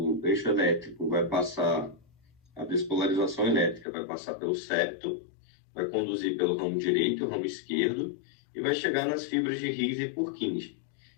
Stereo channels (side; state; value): right; drops out; at 3.9 s